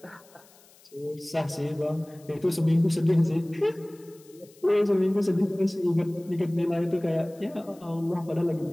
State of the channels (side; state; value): left; noise; hiss, 27 dB below the sound